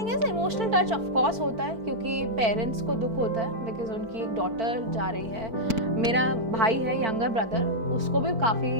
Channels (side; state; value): left; late; 4.5 ms